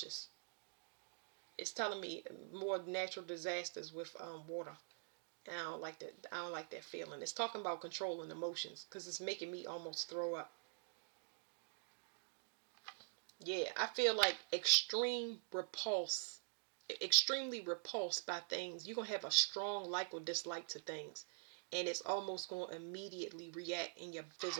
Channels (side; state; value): left; silent; digital silence